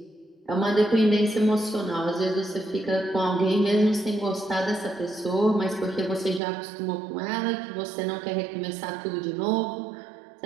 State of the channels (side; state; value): left; drops out; at 6.4 s